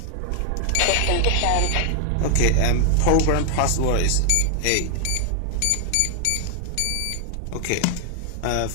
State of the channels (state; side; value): different; both; correlation 0.00